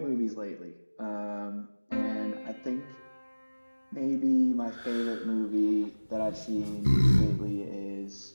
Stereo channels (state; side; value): inverted; both; correlation -1.00